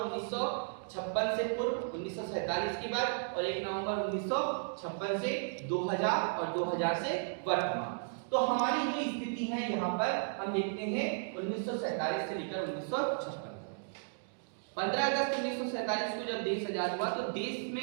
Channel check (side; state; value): left; silent; digital silence